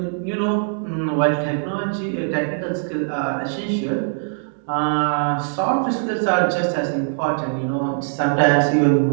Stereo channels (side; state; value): left; silent; digital silence